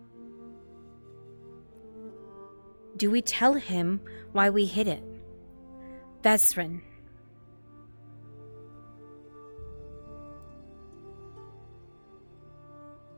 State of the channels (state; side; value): inverted; both; correlation -1.00